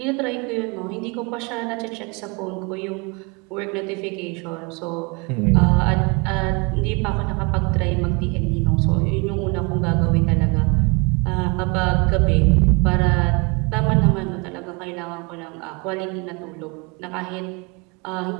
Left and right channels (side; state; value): left; quieter; 30.6 dB